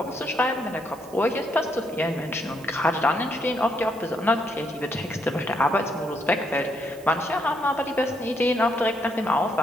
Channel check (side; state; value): right; noise; hiss, 23 dB below the sound